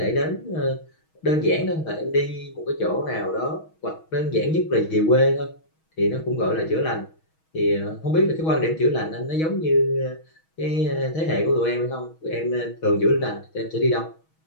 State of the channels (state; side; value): late; right; 6.3 ms